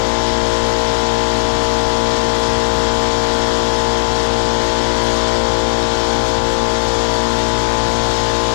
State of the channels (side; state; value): right; silent; digital silence